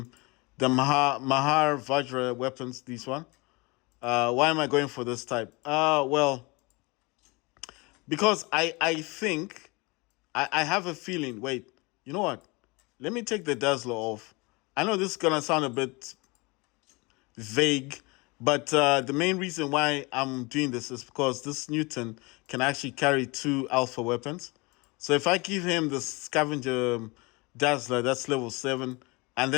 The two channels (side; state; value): right; quieter; 26.3 dB